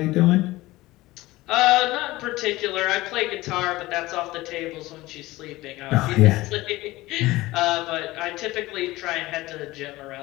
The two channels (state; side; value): quieter; right; 18.9 dB